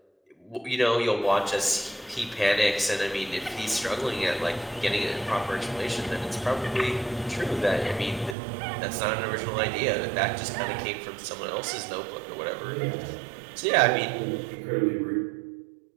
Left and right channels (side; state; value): left; drops out; at 8.3 s